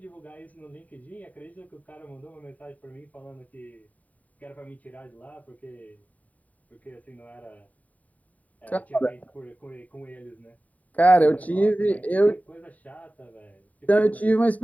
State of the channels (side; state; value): right; late; 0.071 ms